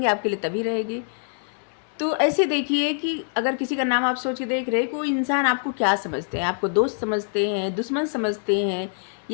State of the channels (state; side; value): silent; right; digital silence